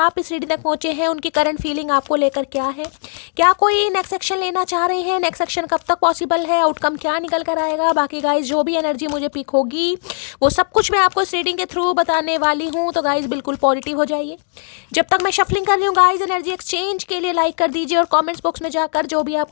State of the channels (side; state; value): right; silent; digital silence